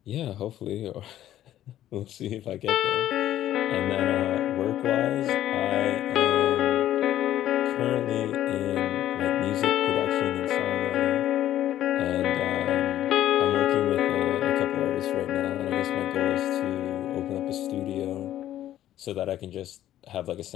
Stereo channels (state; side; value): quieter; right; 12.6 dB